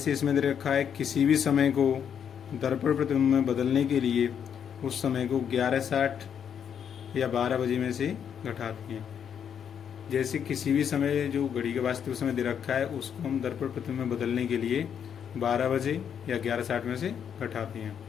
इसमें दे रखा है, किसी भी समय को दर्पण प्रतिबिंब में बदलने के लिए उस समय को 11:60 या 12 बजे में से घटाते हैं। जैसे किसी भी समय जो घड़ी का वास्तविक समय दे रखा है उसको हम दर्पण प्रतिबिंब में बदलने के लिए 12 बजे या 11:60 में से घटाते हैं।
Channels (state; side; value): quieter; right; 8.1 dB